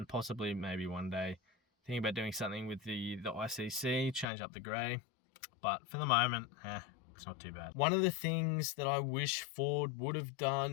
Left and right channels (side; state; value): right; drops out; at 4.2 s